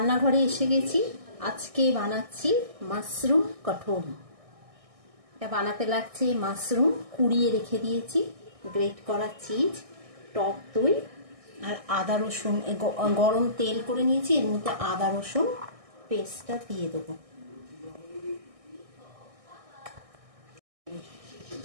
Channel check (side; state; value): left; late; 1.6 ms